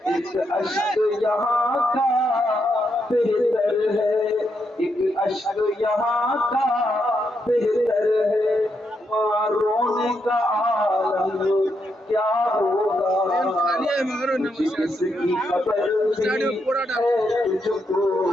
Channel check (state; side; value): normal; both; correlation 0.80